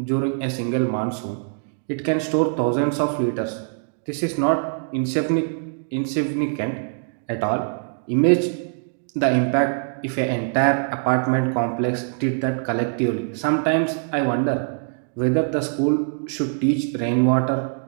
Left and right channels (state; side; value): silent; left; digital silence